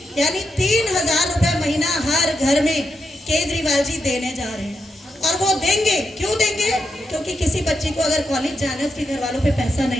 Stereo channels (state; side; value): normal; both; correlation 0.84